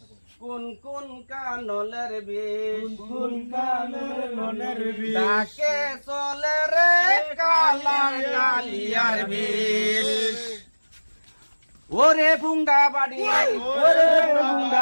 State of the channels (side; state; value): both; inverted; correlation -1.00